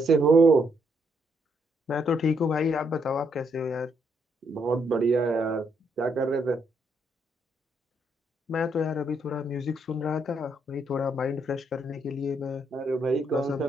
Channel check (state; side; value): normal; both; correlation 0.74